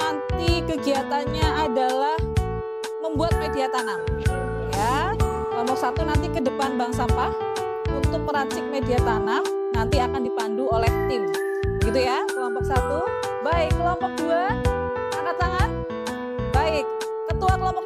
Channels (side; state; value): both; identical; correlation 1.00